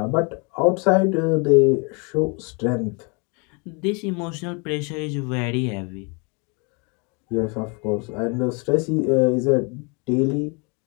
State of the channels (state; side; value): quieter; right; 32.8 dB